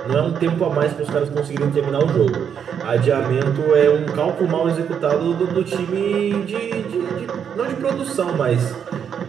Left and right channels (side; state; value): left; quieter; 7.9 dB